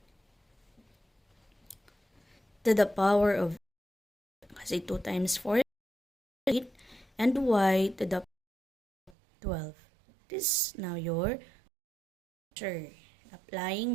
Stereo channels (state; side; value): drops out; left; at 9.1 s